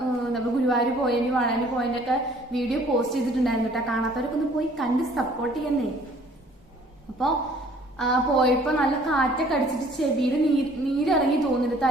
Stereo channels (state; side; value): normal; both; correlation 0.56